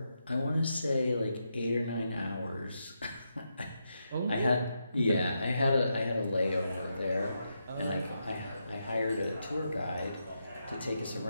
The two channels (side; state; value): both; inverted; correlation -0.84